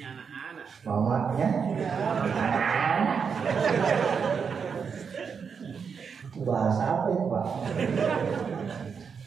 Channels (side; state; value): left; quieter; 6.2 dB